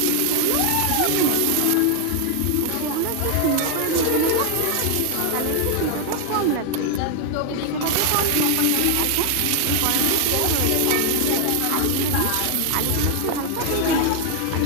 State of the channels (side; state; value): both; different; correlation 0.00